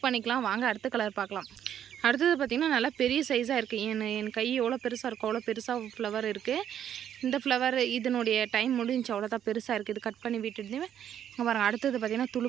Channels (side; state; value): left; quieter; 9.8 dB